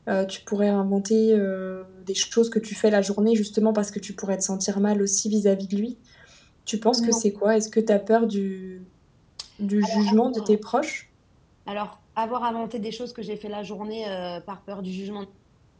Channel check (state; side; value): identical; both; correlation 1.00